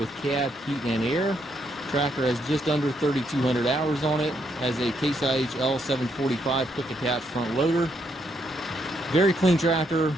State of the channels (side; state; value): both; normal; correlation 0.75